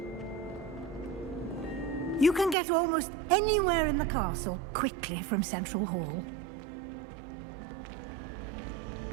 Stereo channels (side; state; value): left; drops out; at 2.6 s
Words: You can get almost anywhere in the castle quickly from Central Hall.